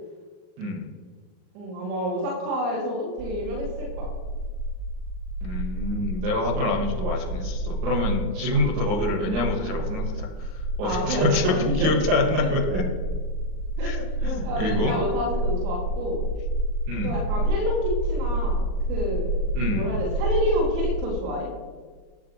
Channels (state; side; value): late; left; 38 ms